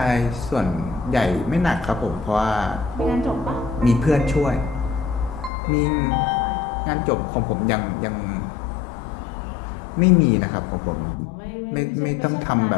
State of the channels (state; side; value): drops out; right; at 5.5 s